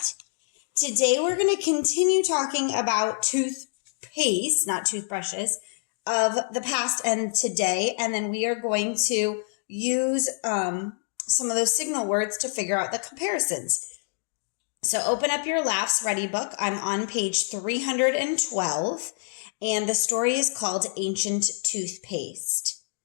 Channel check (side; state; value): right; silent; digital silence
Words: Today we're going to continue talking about toothpaste, not toothbrushes, of the past and today. And then we are going to use some of those signal words to figure out the comparisons. So open up your LAFS Ready book. I'm on page 312, and the story is called Ancient Toothpaste.